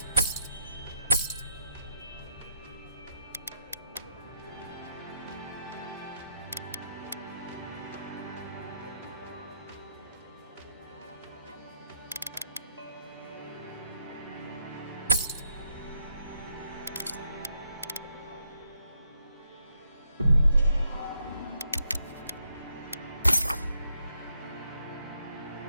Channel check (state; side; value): inverted; both; correlation -0.75